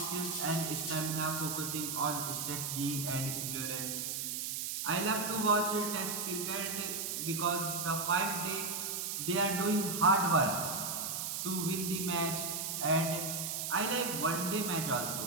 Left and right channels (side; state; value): right; noise; hiss, 2 dB below the sound